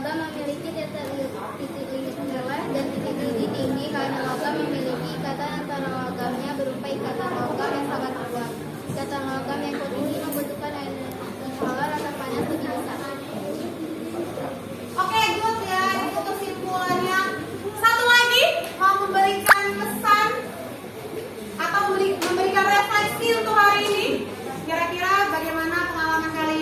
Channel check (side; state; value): both; identical; correlation 1.00